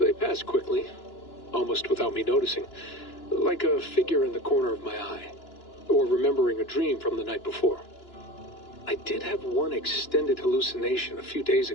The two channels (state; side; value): late; right; 2.9 ms